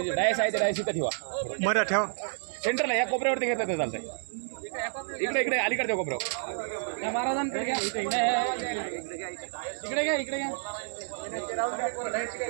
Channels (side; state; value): left; silent; 58 dB below the other